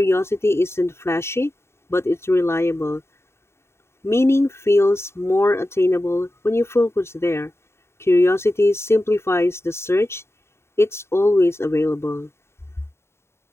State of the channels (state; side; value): late; right; 0.12 ms